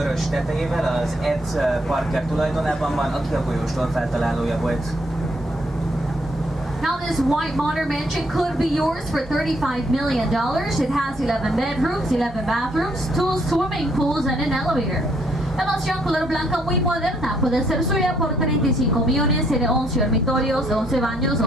tetejével az Ed Parker tulajdonában van, aki a folyóstól feltalálója volt. Now this white modern mansion could be yours for $35 million. It has 11 bedrooms, 11 bathrooms, 2 swimming pools and an elevator. La mansión color blanca muy moderna puede ser suya por 35 millones, tiene 11 dormitorios, 11 baños,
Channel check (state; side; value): normal; both; correlation 0.70